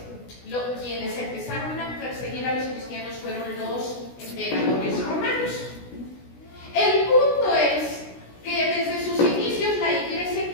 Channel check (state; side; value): late; right; 16 ms